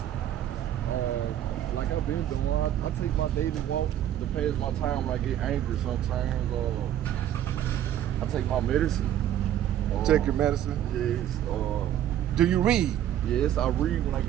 Like I've been doing, I take my daily walk to pass my time when I get angry sometimes. I take my medicine. Take your medicine. Yes. Do you read? Yes, I read when I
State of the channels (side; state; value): left; quieter; 11.3 dB